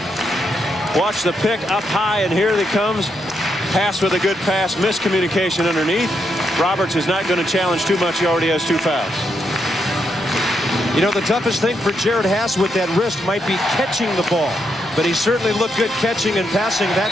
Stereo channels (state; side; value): normal; both; correlation 0.80